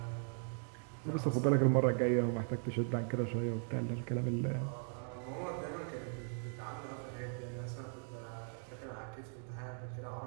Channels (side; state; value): left; silent; 52 dB below the other